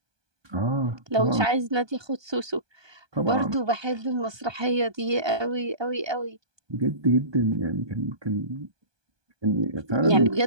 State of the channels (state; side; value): late; left; 1.2 ms